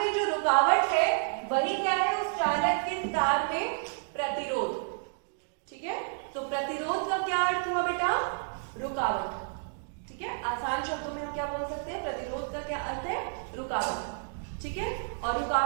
जो रुकावट है वही क्या है, उस चालक के तार में प्रतिरोध। ठीक है, तो प्रतिरोध का क्या अर्थ हुआ बेटा, रुकावट। ठीक है, आसान शब्दों में हम क्या बोल सकते हैं, प्रतिरोध का क्या अर्थ है, रुकावट। ठीक है, और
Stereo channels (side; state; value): left; silent; digital silence